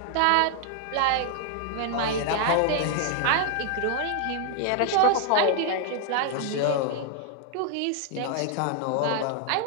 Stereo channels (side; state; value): both; different; correlation 0.00